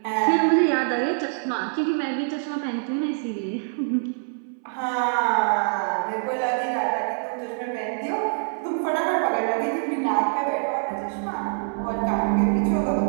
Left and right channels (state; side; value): silent; left; 59 dB below the other